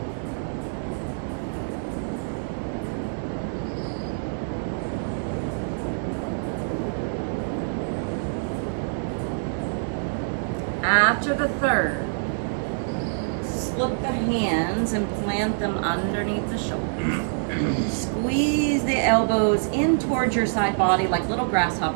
After the third, slip the hands and plant them underneath the shoulders. Squeeze the elbows in towards your side body like little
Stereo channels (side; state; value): left; silent; digital silence